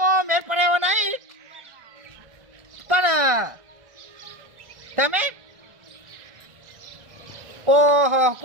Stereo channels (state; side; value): late; left; 1.3 ms